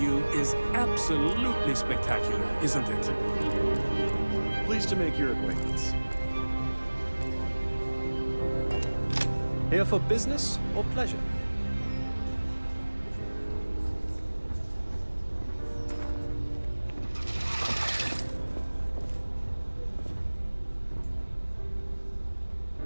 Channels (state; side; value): inverted; both; correlation -1.00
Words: is absolutely spectacular, isn't it? Pleased to make your acquaintance. Here for business or pleasure?